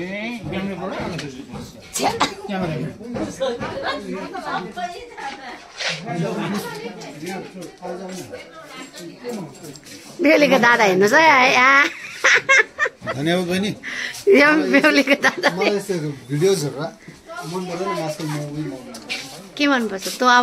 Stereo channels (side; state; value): both; identical; correlation 1.00